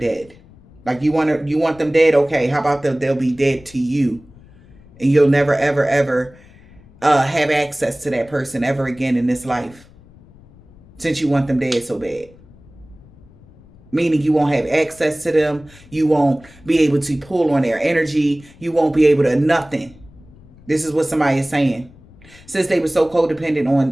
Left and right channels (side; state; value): left; noise; rumble, 24 dB below the sound